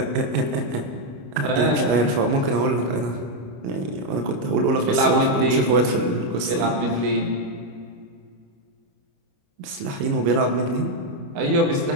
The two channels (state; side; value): late; left; 28 ms